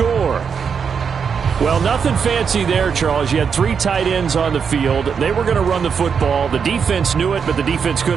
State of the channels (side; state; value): left; quieter; 6.5 dB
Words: Well, nothing fancy there, Charles. You had 3 tight ends on the field. They were going to run the football. The defense knew it, but the defense